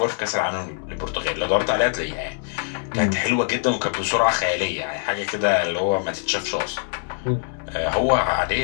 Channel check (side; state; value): right; silent; 63 dB below the other